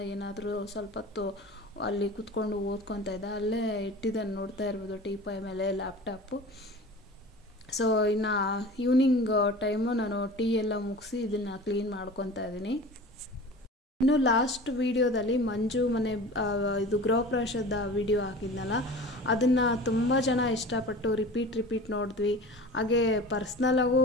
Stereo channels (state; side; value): normal; both; correlation 0.38